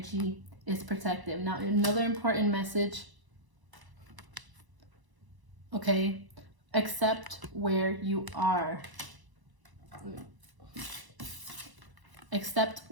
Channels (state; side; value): late; left; 1.0 ms